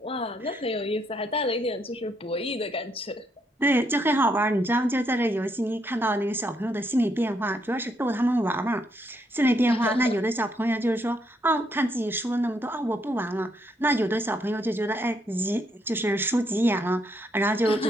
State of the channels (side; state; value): both; normal; correlation 0.75